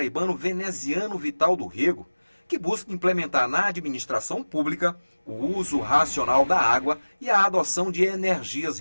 Veneziano Vital do Rego, que busca implementar na administração pública o uso racional da água e a adoção de energias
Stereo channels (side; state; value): both; inverted; correlation -1.00